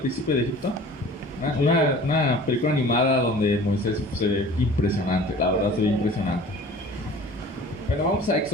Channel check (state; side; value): normal; both; correlation 0.45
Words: de Egipto? Una película animada donde Moisés se ve impresionante, la verdad se ve impresionante. Bueno, vamos a